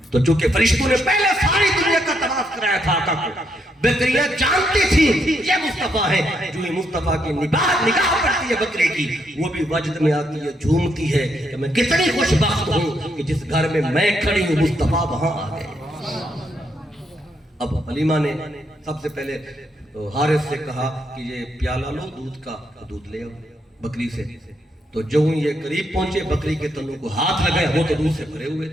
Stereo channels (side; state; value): both; normal; correlation 0.77